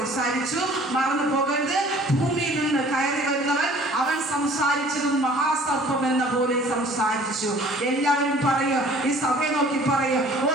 മറന്നു പോകരുത്, ഭൂമിയിൽ നിന്ന് കയറി വരുന്നവൻ അവൻ സംസാരിച്ചതും മഹാസർപ്പം എന്ന പോലെ സംസാരിച്ചു. എല്ലാവരും പറയും, ഈ സഭയെ നോക്കി പറയും, ഓ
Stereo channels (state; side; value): normal; both; correlation 0.52